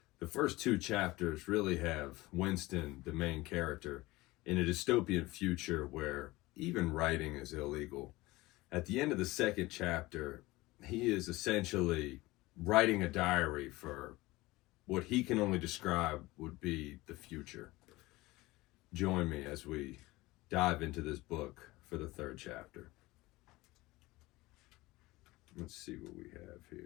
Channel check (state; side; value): quieter; right; 20.2 dB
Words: The first two chapters really have Winston, the main character, in a dystopian future where even writing is illegal. At the end of the second chapter, he is essentially writing a diary for what he can only describe would be the future. Join me as we dive into this book for the third chapter. Let's see what we have